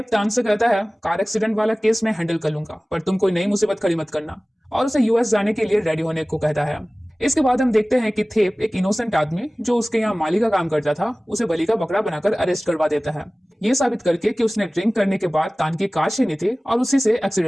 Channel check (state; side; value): normal; both; correlation 0.98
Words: तान से कहता है कार एक्सीडेंट वाला केस मैं हैंडल कर लूंगा, पर तुम कोई नई मुसीबत खड़ी मत करना, और उसे यूएस जाने के लिए रेडी होने को कहता है। इसके बाद हम देखते हैं कि थेप एक इनोसेंट आदमी जो उसके यहाँ माली का काम करता था उसे बलि का बकरा बनाकर अरेस्ट करवा देता है, ये साबित करके कि उसने ड्रिंक करने के बाद तान की कार छीनी थी और उसी से